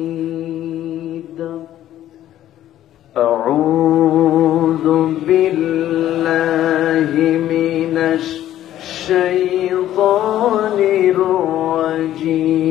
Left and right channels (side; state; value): right; quieter; 12.5 dB